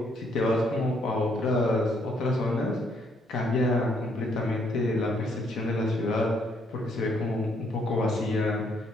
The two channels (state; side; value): normal; both; correlation 0.70